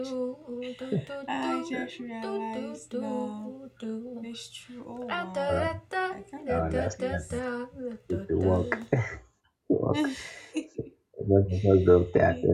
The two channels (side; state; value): both; identical; correlation 1.00